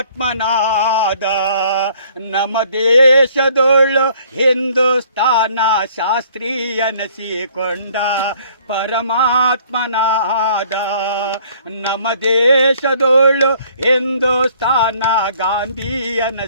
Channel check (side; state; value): both; inverted; correlation -0.59